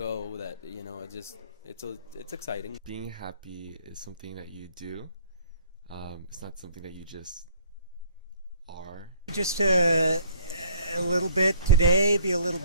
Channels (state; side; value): inverted; both; correlation -0.56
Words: that, it's exciting. Being happy is something that you do. It's not something that you just are. Just to a little bit today, be a little